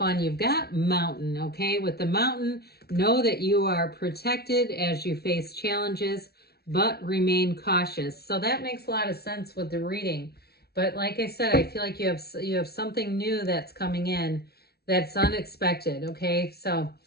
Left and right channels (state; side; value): late; right; 0.46 ms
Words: You've got Mountain, okay? With the Mountain, know that you are protected as you face challenges, but remain cautious. So that makes a lot of sense with the reading. But like I said, I feel like you have something new that's coming in that's unexpected, okay? So